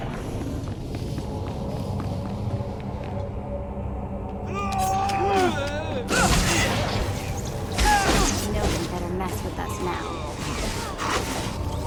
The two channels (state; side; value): identical; both; correlation 1.00